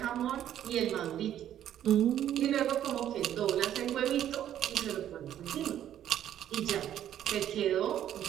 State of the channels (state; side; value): quieter; left; 11.0 dB